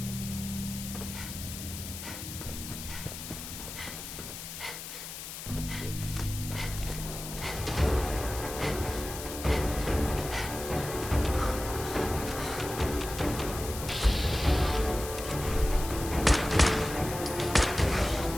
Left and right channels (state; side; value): noise; left; hiss, 9 dB below the sound